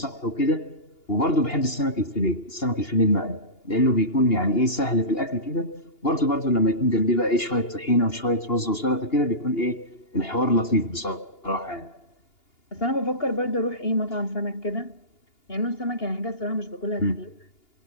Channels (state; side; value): late; right; 2.8 ms